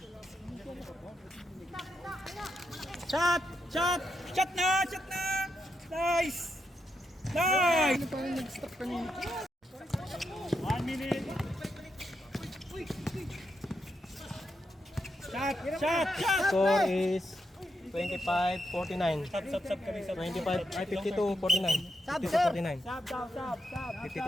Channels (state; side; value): normal; both; correlation 0.83